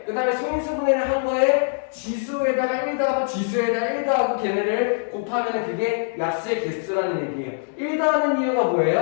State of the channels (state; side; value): silent; right; digital silence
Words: 그 다음에 소인수 분해를 한 거에 지수에다가 1 더하고 지수에다가 1 더하고 걔네를 곱하면 그게 약수의 개수라는 얘기예요. 1 더하는 이유가